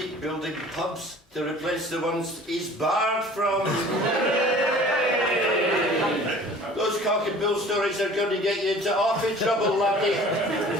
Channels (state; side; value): normal; both; correlation 0.47